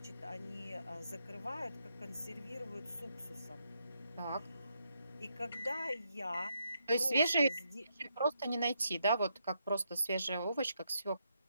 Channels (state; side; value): inverted; both; correlation -0.79